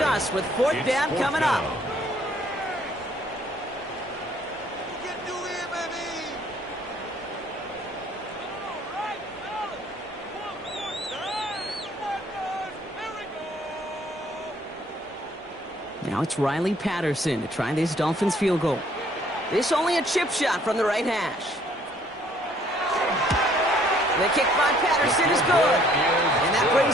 with 4th down coming up. Now it's Riley Patterson to try this Dolphins field goal. This only a chip shot from the right hash. The kick by Patterson is good. And that brings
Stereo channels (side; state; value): both; normal; correlation 0.61